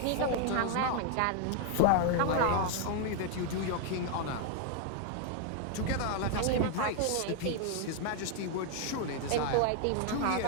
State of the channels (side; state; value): both; different; correlation 0.00